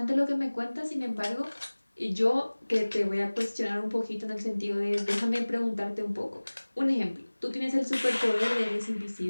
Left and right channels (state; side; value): inverted; both; correlation -1.00